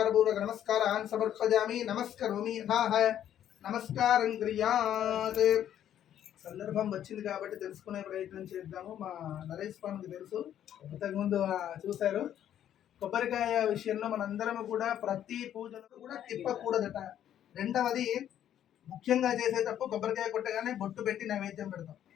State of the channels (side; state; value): right; quieter; 10.7 dB